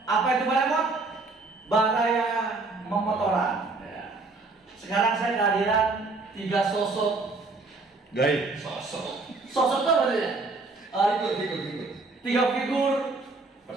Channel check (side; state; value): left; quieter; 3.6 dB